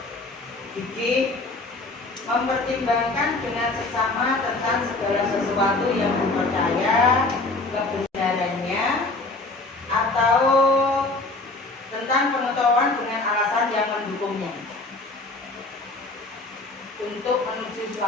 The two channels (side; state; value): right; quieter; 3.2 dB